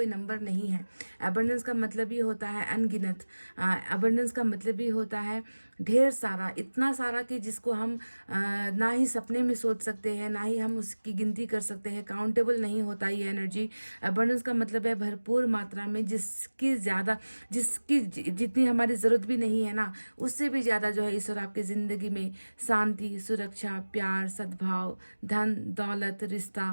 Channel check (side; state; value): both; inverted; correlation -1.00